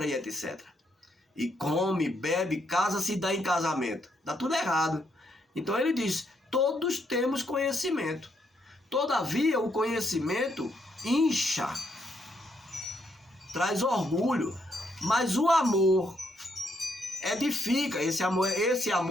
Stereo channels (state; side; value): normal; both; correlation 0.75